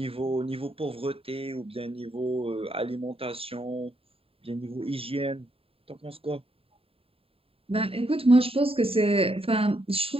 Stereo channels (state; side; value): late; left; 0.27 ms